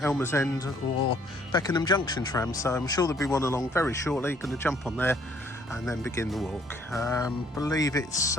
End or Beckenham Junction tram, so I'm sure there'll be one along very shortly. Going to jump on there and then begin the walk. Believe it's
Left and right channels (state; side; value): normal; both; correlation 0.63